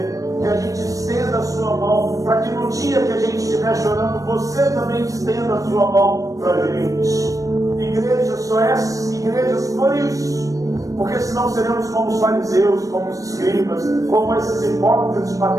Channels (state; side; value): late; left; 0.16 ms